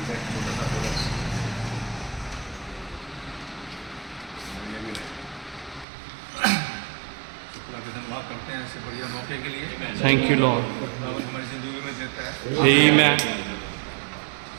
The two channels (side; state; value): left; drops out; at 5.9 s